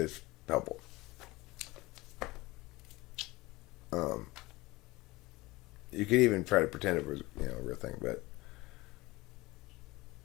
helpful. You could even try to pretend it was, a real thing, but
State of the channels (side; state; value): right; quieter; 21.0 dB